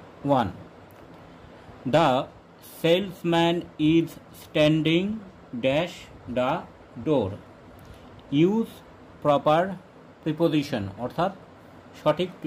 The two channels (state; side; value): identical; both; correlation 1.00